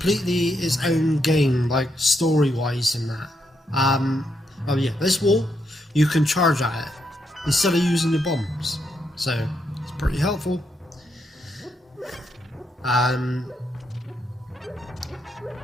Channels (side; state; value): both; normal; correlation 0.79